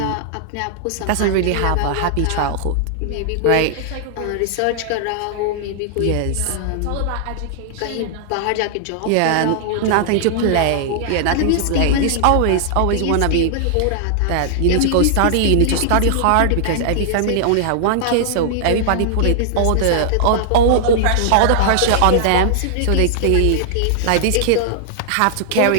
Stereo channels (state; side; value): different; both; correlation -0.01